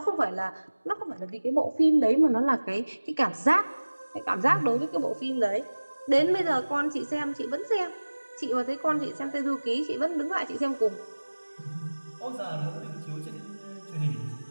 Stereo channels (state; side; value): inverted; both; correlation -1.00